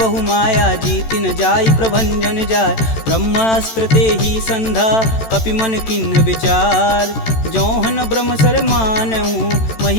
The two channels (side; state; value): right; late; 13 ms